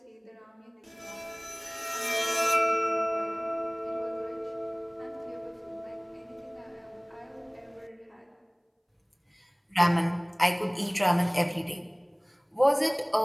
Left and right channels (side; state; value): both; identical; correlation 1.00